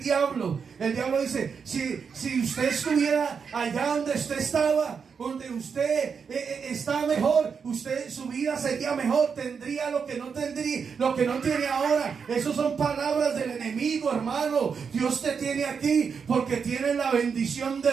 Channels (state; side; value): quieter; left; 6.1 dB